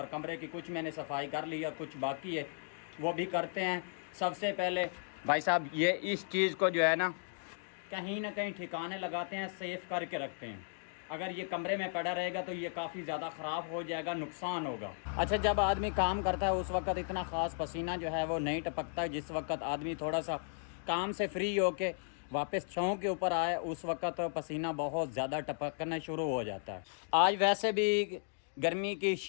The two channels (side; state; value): right; silent; digital silence